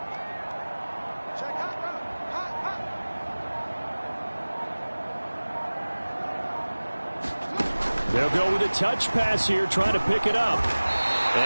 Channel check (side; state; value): both; inverted; correlation -1.00